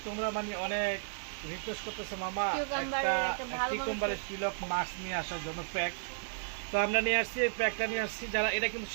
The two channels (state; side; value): silent; left; digital silence